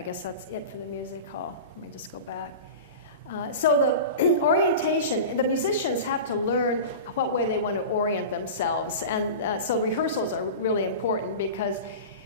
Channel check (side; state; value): both; inverted; correlation -0.31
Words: guess that's it for the music hall. Let me just go back. So the orientation, the musicians have to learn what way they want to orient themselves. And so rehearsals are really important because